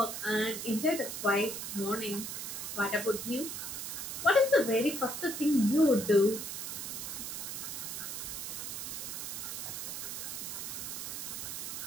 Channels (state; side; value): noise; right; hiss, 5 dB below the sound